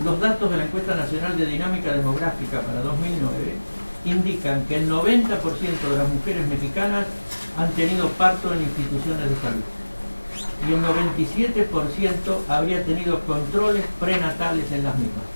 los datos de la Encuesta Nacional de Dinámica Demográfica para 2009 indican que el 90% de las mujeres mexicanas han tenido parto en instituciones de salud y el 97% habría tenido controles prenatales en las mismas.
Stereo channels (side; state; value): both; inverted; correlation -1.00